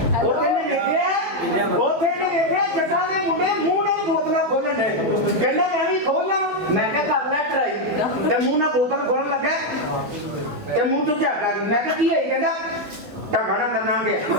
ਉਹਨੇ ਵੇਖਿਆ ਜੱਟਾਂ ਦੇ ਮੁੰਡੇ ਮੂੰਹ ਨਾਲ ਬੋਤਲਾਂ ਖੋਲਣ ਦੇ ਕਹਿੰਦਾ ਮੈਂ ਵੀ ਖੋਲਣਾ ਮੈਂ ਕਿਹਾ ਕਰ ਲੈ ਟਰਾਈ ਤੇ ਮੂੰਹ ਨਾਲ ਬੋਤਲ ਖੋਲਣ ਲੱਗਾ ਤੇ ਮੂੰਹ ਤੋਂ ਝਾਕਾ ਮੈਂ ਕਿਹਾ ਕੀ ਹੈ ਕਹਿੰਦਾ ਢਾਕਣਾ ਕਰਨਾ ਗਿਆ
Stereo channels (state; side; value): late; left; 13 ms